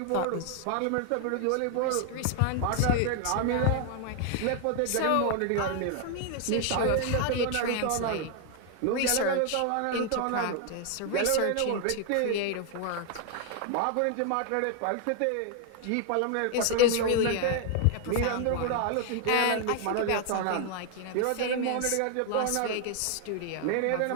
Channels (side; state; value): both; different; correlation 0.00